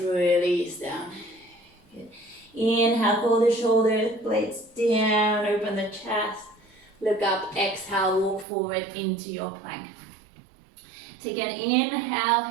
down. Good. Inhale, pull the shoulder blades down, open the chest. Look up, exhale, walk forward into your plank. Take an inhale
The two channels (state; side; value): drops out; left; at 8.5 s